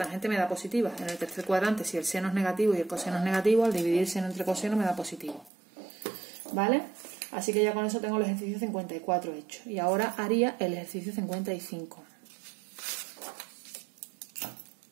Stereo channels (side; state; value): left; drops out; at 5.5 s